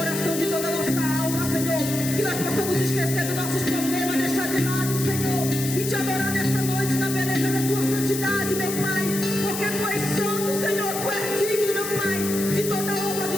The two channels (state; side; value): noise; left; hiss, 6 dB below the sound